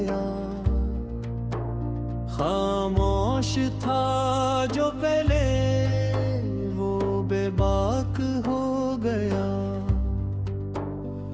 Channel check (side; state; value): both; identical; correlation 1.00